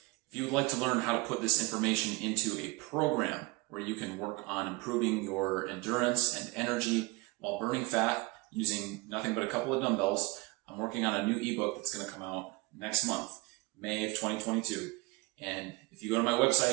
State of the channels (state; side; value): quieter; left; 24.1 dB